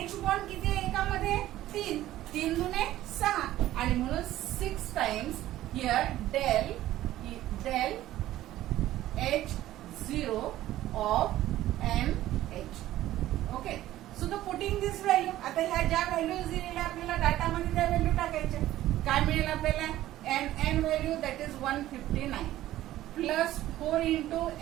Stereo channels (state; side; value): quieter; left; 14.4 dB